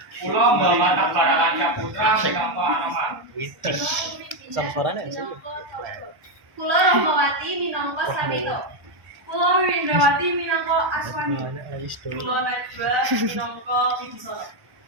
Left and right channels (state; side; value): late; left; 1.1 ms